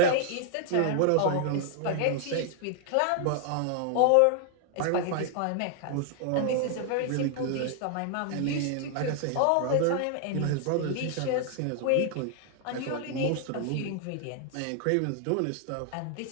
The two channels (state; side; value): different; both; correlation 0.00